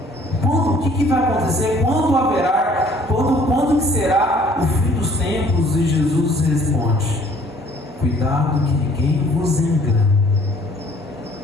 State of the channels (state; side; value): normal; both; correlation 0.57